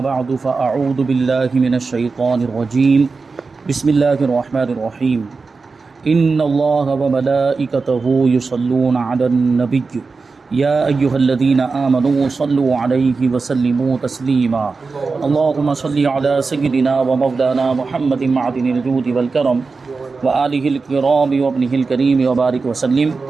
بعد فاعوذ بالله من الشیطان الرجیم، بسم اللہ الرحمن الرحیم۔ ان اللہ وملائکته یصلون علی النبی یا ایہا الذین آمنوا صلوا علیہ وسلموا تسلیما۔ اللہم صل علی سیدنا ومولانا محمد معدن الجود والکرم وآلہ الکرام وابنہ الکریم وبارک وسلم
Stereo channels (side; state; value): left; quieter; 4.3 dB